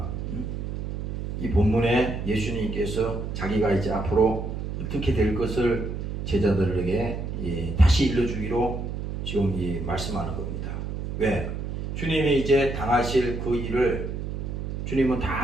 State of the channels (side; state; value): right; noise; hum, 5 dB below the sound